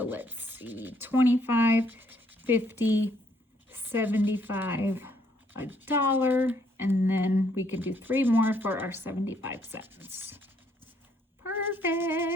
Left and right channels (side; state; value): both; normal; correlation 0.69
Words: let's see, 25, 50, 75, $1, and then we can do 3 more for our 75 cents.